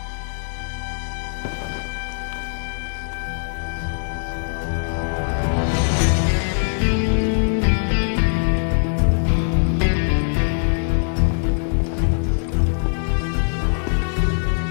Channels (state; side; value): silent; right; digital silence